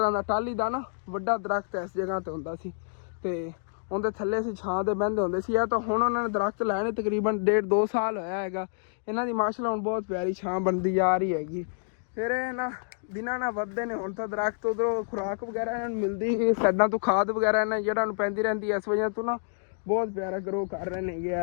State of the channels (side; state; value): right; silent; digital silence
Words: का टाली का ना वड्डा दरख्त इस जगह ते हुंदा सी ते उनके थल्ले असीं छां दे बहिंदे हुंदे सी। तो हुण उन्होंने दरख्त लाए ने तकरीबन 1.5-2 साल होया हैगा। इन्हां दी माशाअल्लाह हुण बहुत प्यारी छां बनदी जा रही हैगी। फिर ना दिनां ना वधदे ने हुण तां दरख्त उधरों खुराक वगैरह इन्हां नूं मिलदी साइडां तो खाद वगैरह इन्हां जेह्ड़ा नूं पैंदी रहिंदी इस वजह तो ना बहुत प्यारा ग्रो कर रहे ने ये